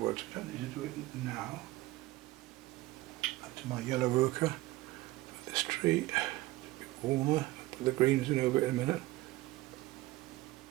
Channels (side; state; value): left; quieter; 18.4 dB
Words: We don't need to do it now. Back to my yellow ochre. Put this tree a bit warmer. Put the greens in over it in a minute.